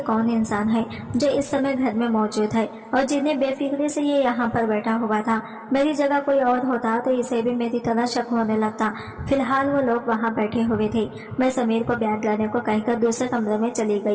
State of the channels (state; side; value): identical; both; correlation 1.00